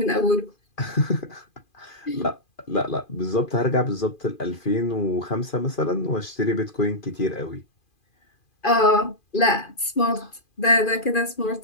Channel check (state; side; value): late; right; 2.4 ms